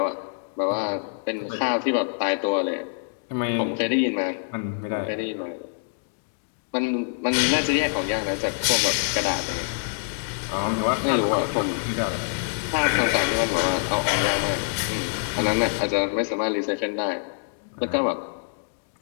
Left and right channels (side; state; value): right; silent; digital silence